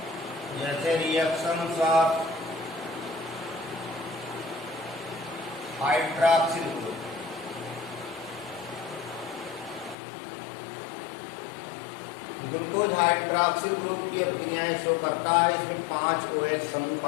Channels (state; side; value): drops out; right; at 10.0 s